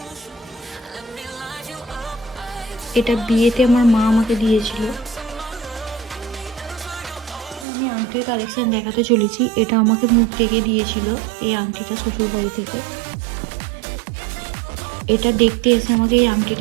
এটা বিয়েতে আমার মা আমাকে দিয়েছিল। আমি আংটির কালেকশন দেখাতে চলেছি। এটা আমাকে মুখ থেকে দিয়েছিল এই আংটিটা শ্বশুর বাড়ি থেকে। এটা দেখতে এসে আমাকে এই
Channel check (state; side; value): drops out; left; at 7.7 s